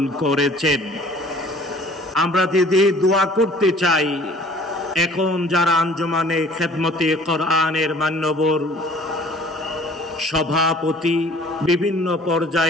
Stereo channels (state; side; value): normal; both; correlation 0.51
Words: করেছেন। আমরা দিদি দোয়া করতে চাই, এখন যারা আঞ্জুমানে খেদমতে কোরআনের মান্যবর সভাপতি, বিভিন্ন